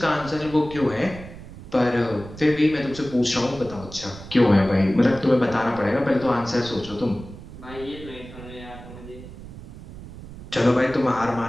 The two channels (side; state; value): right; noise; rumble, 15 dB below the sound